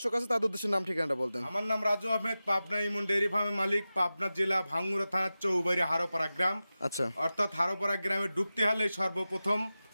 আছে তাদের উদ্দেশ্যে নাম ঠিকানাটা বলতেন। আমার নাম রাজু আহমেদ, পাবনা ইমন ডেয়ারি ফার্মের মালিক, পাবনা জেলা ভাঙ্গুড়া থানার চৌবাড়ি হারোপাড়া গ্রাম। আচ্ছা অর্থাৎ হারোপাড়া গ্রামে ঢুকতে হলে সর্বপ্রথম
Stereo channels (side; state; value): both; inverted; correlation -0.95